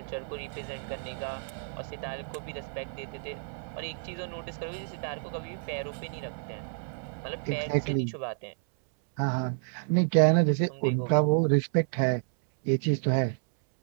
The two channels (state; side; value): silent; left; 58 dB below the other